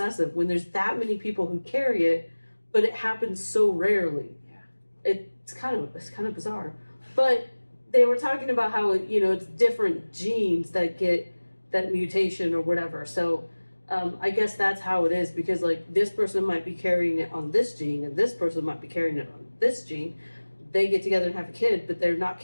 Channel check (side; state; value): both; inverted; correlation -1.00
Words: when there's that many people who carry it, but it happens so rarely. Yeah. It's kind of bizarre. But they were talking about how it's different genes that get that mutation or whatever. So I guess that's how it is because this person might be carrying it on this gene and this person might be carrying it on this gene. They get together and have a kid, but they're not